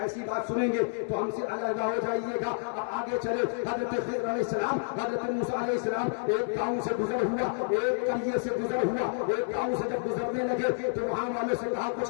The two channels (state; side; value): silent; right; 58 dB below the other